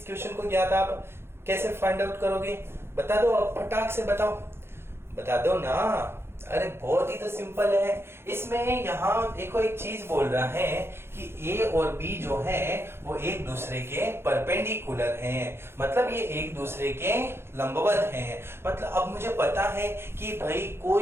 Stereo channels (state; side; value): late; left; 0.12 ms